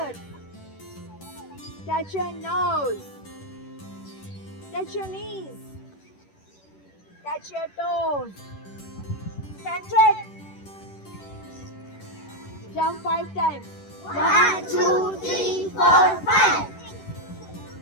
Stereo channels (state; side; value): late; right; 10 ms